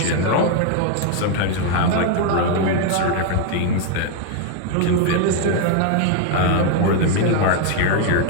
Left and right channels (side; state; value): both; different; correlation 0.00